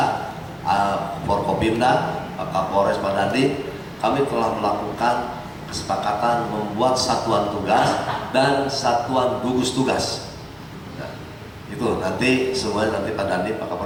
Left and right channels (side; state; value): both; identical; correlation 1.00